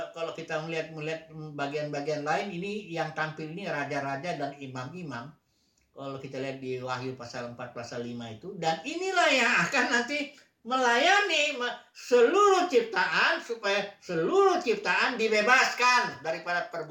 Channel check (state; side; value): identical; both; correlation 1.00